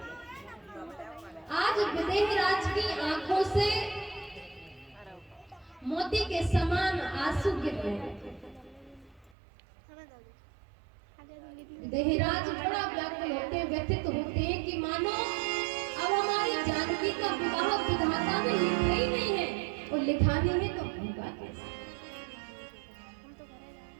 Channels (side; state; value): left; drops out; at 9.3 s